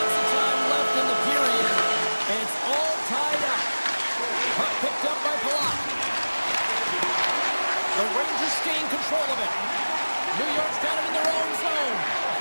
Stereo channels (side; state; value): both; inverted; correlation -1.00